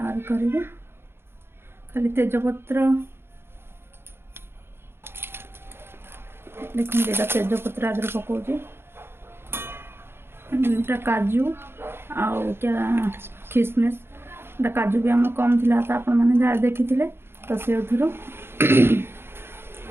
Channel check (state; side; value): late; left; 0.11 ms